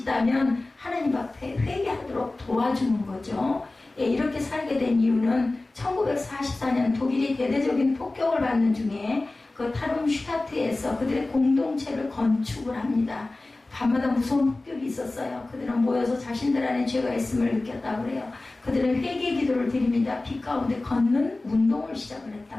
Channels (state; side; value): quieter; right; 3.0 dB